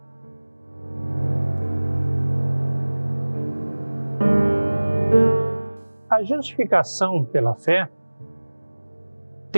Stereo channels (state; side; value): inverted; both; correlation -1.00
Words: A justificação pela fé